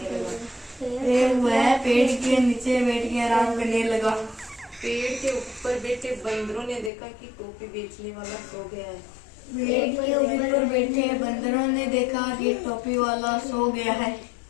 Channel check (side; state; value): right; drops out; at 6.9 s